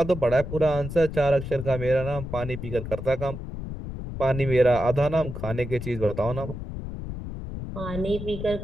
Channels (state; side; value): noise; left; rumble, 8 dB below the sound